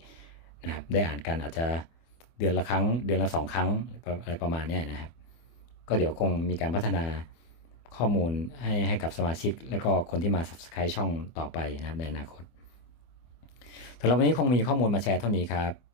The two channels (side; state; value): right; late; 24 ms